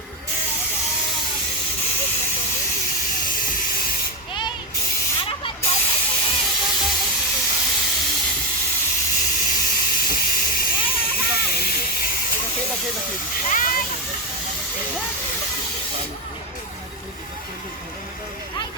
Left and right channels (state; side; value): normal; both; correlation 0.12